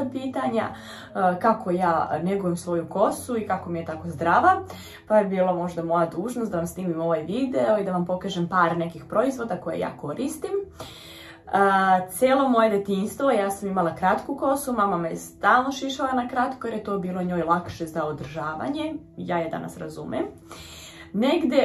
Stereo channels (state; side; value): identical; both; correlation 1.00